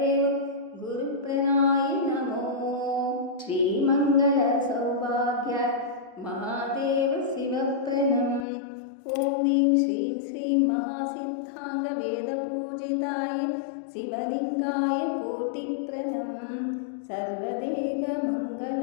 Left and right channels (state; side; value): drops out; right; at 8.5 s